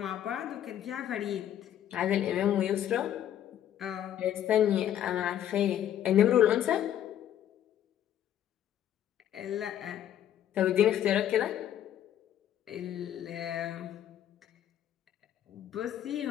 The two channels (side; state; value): right; quieter; 10.9 dB